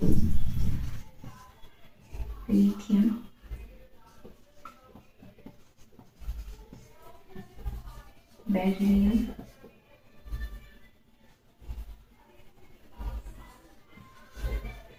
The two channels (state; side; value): identical; both; correlation 1.00